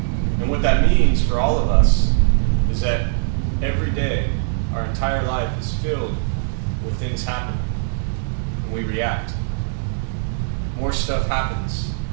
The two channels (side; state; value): left; silent; digital silence